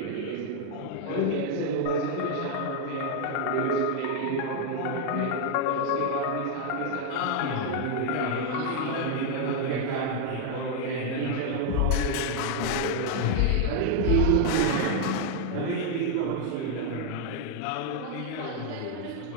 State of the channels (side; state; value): both; different; correlation 0.00